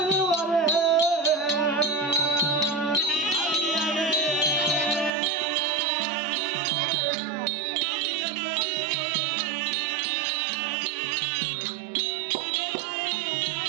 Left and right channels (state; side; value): drops out; left; at 5.1 s